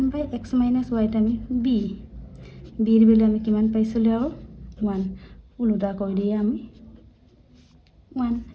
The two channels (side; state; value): both; identical; correlation 1.00